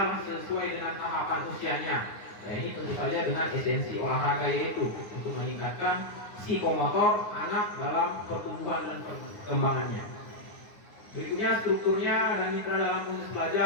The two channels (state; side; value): late; right; 9.6 ms